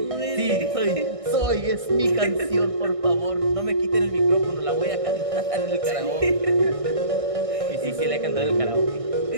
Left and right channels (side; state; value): left; late; 1.6 ms